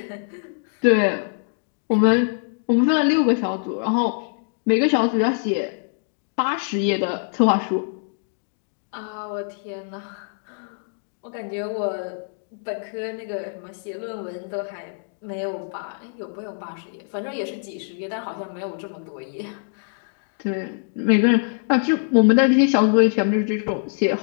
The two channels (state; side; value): silent; right; digital silence